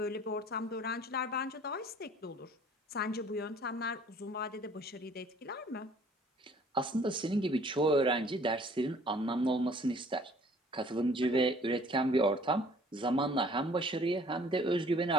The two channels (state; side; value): normal; both; correlation 0.54